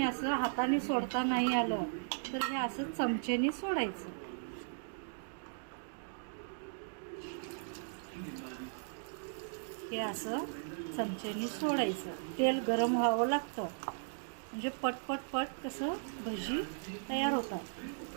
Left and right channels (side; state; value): left; silent; digital silence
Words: असं हाताने सोडता नाही आलं तर हे असं चमचेने सोडायचं. हे असं चमचेने सोडायचं. तेल गरम व्हावं लागतं म्हणजे पट कसं भजी तयार होतात,